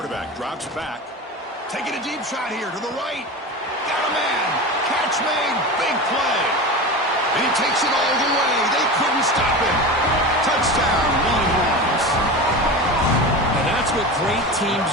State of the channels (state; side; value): normal; both; correlation 0.28